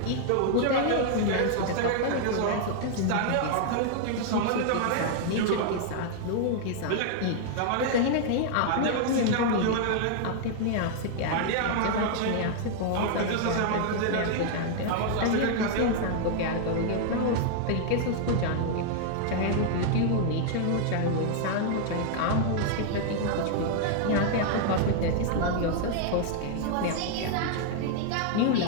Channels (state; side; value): different; both; correlation 0.00